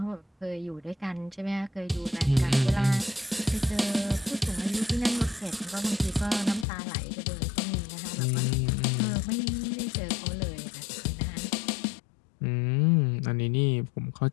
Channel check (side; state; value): right; drops out; at 6.7 s